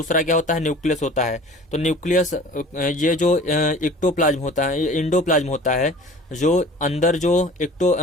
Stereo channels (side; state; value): both; normal; correlation 0.44